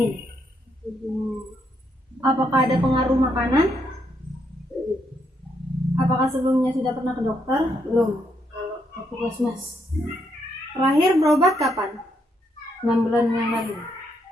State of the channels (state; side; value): normal; both; correlation 0.76